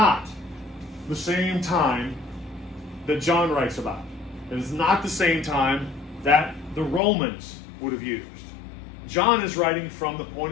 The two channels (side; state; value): right; drops out; at 7.0 s